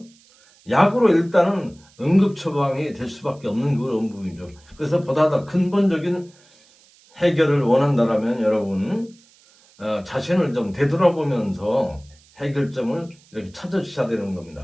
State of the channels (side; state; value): right; noise; hiss, 29 dB below the sound